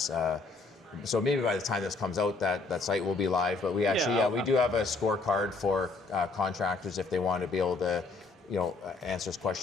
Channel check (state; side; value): quieter; right; 3.8 dB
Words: So maybe by the time this comes out, that site will be live. But we actually, we do have a scorecard for contractors if they want to be able to answers